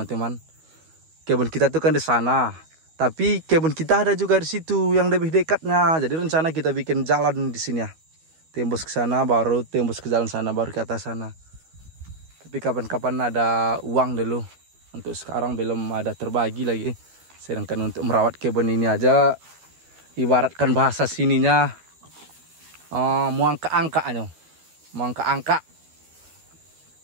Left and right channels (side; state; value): left; late; 12 ms